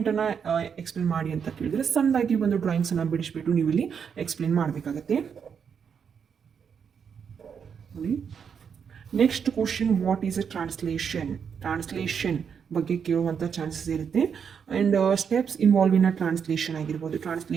ಎಕ್ಸ್ಪ್ಲೇನ್ ಮಾಡಿ ಅಂತ ಕೇಳಿದರೆ ಸಣ್ಣದಾಗಿ ಒಂದು ಡ್ರಾಯಿಂಗ್ಸನ್ನು ಬಿಡಿಸ್ಬಿಟ್ಟು ನೀವು ಇಲ್ಲಿ ಎಕ್ಸ್ಪ್ಲೇನ್ ಮಾಡಬೇಕಾಗತ್ತೆ. Next question, what is a translation ಬಗ್ಗೆ ಕೇಳುವಂಥ ಚಾನ್ಸಸ್ ಇರುತ್ತೆ. And steps involve in a translation ಆಗಿರ್ಬೋದು.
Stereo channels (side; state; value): left; quieter; 7.0 dB